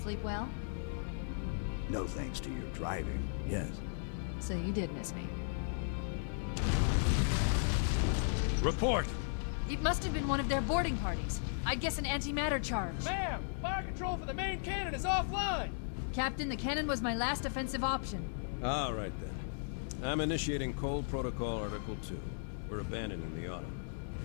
Sleep well? No thanks to your driving, yes. So you did miss me. Report! It must have been one of their boarding parties. I'd guess an antimatter charge. Ma'am, fire control for the main cannon is offline. Captain, the cannon was my last offensive option. All right, then. I'm initiating Cold Protocol Article 2. We're abandoning the Autumn.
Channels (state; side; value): silent; right; digital silence